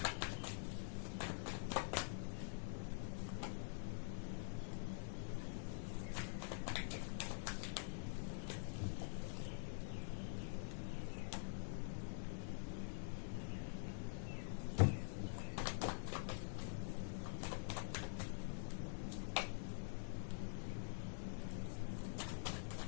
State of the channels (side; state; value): right; silent; digital silence